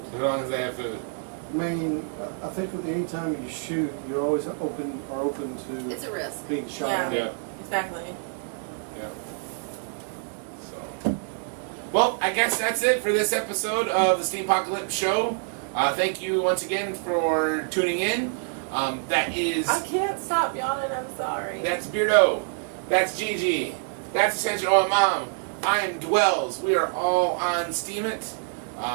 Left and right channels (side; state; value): left; silent; 61 dB below the other